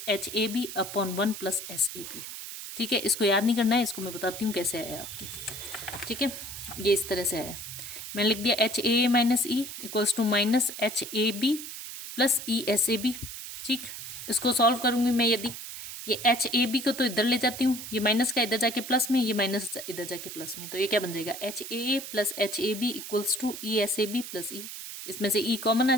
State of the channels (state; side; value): noise; right; hiss, 9 dB below the sound